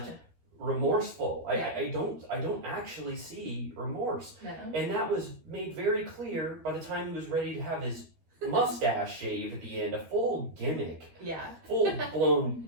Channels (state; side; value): late; left; 13 ms